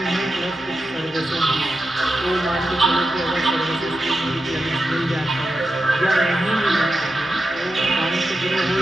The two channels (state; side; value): noise; left; hum, 29 dB below the sound